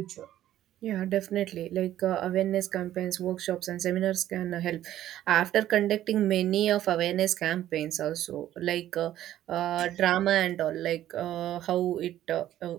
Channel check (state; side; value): quieter; left; 12.7 dB